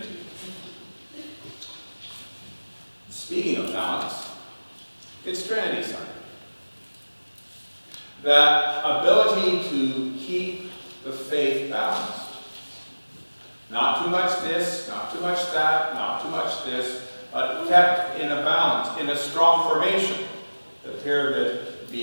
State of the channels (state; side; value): inverted; both; correlation -1.00